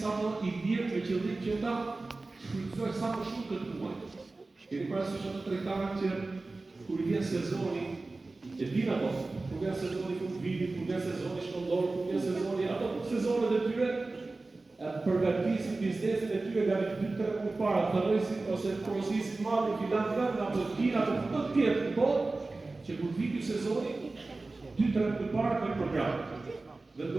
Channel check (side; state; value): left; quieter; 3.4 dB